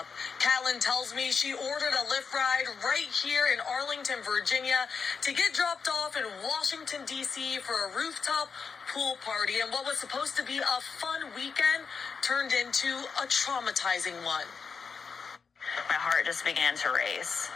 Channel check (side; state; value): right; quieter; 5.5 dB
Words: Catlin tells me she ordered a Lyft ride right here in Arlington, Virginia, to get dropped off in Washington, D.C. for a rooftop pool party. And what was supposed to be a fun weekend turned into a traumatizing one. My heart just began to race.